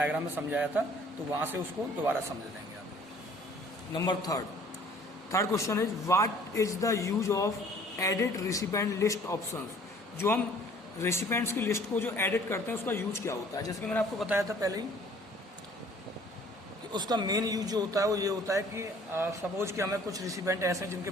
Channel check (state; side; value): normal; both; correlation 0.54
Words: में समझाया था, तो वहाँ से उसको दोबारा समझ लेंगे आप। Number third question is what is the use of edit recipient list options. जो हम रेसिपेंट्स की लिस्ट को जो एडिट करते हैं उसका यूज क्या होता है, जैसे कि मैंने आपको बताया था पहले ही कि उसका मेन यूज जो होता है वो ये होता है कि सपोज कि हमें कुछ रेसिपेंट ऐसे हैं जिनके